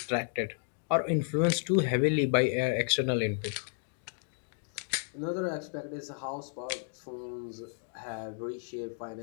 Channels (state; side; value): silent; right; digital silence